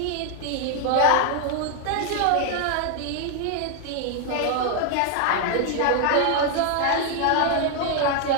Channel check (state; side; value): different; both; correlation 0.00